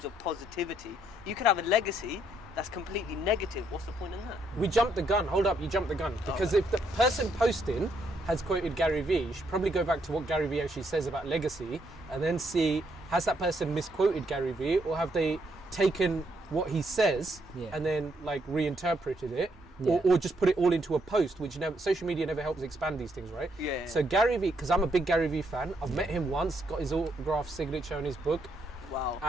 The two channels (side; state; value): both; normal; correlation 0.74